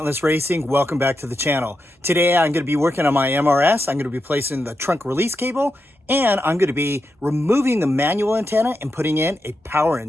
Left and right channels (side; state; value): both; normal; correlation 0.87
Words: Racing. Welcome back to the channel. Today I'm going to be working on my MRS. I'm going to be placing the trunk release cable, and I'm going to be removing the manual antenna and putting in a power